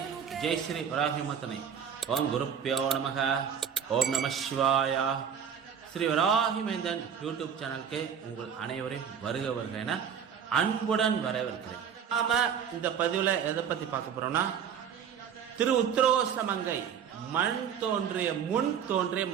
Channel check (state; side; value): quieter; left; 7.8 dB